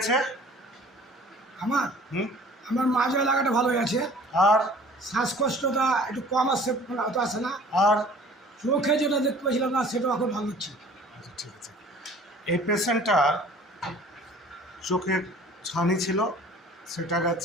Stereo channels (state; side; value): normal; both; correlation 0.49